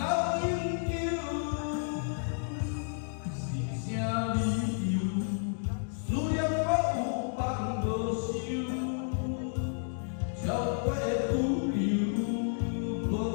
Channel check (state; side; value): silent; right; digital silence